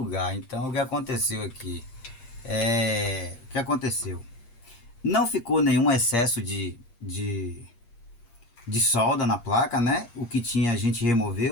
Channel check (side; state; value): right; late; 8.5 ms